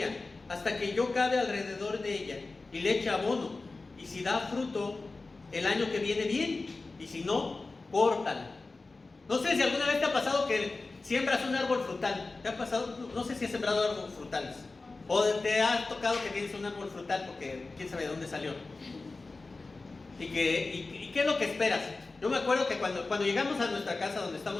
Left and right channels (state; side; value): quieter; right; 3.6 dB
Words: hasta que yo cabe alrededor de ella y le eche abono. Y si da fruto el año que viene, bien, y si no, córtala. No sé si alguna vez te ha pasado que siembras un árbol frutal. ¿Te ha pasado? No sé si has sembrado árboles frutales. O te ha tocado que tienes un árbol frutal porque quién sabe de dónde salió. ¿Y qué es lo que esperas? Yo me acuerdo que cuando llegamos a nuestra casa donde